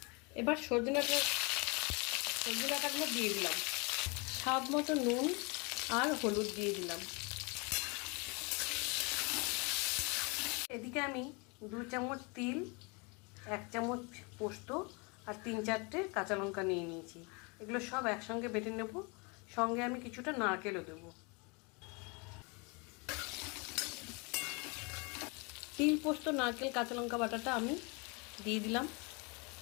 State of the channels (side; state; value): right; quieter; 30.4 dB